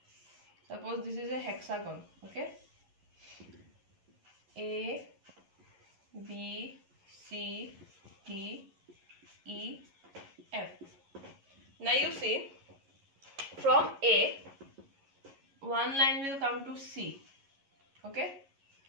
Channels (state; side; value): late; left; 11 ms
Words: Suppose this is a hexagon. Okay, A, B, C, D, E, F. Now you see, from A, one line will come to C. Okay,